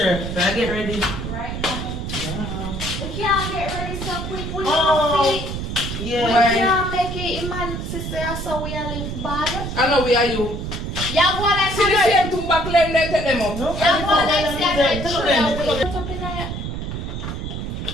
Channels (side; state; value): right; noise; rumble, 5 dB below the sound